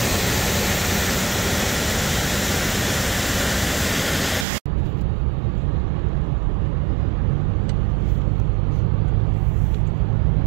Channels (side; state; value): left; drops out; at 4.5 s